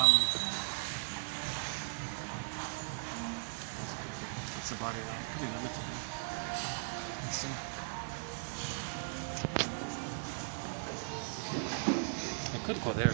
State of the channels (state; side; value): silent; left; digital silence